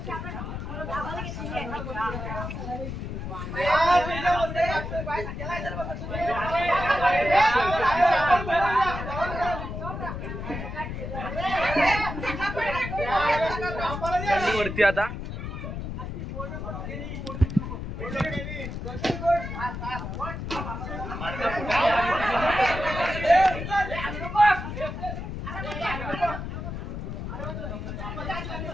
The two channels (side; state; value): left; noise; rumble, 6 dB below the sound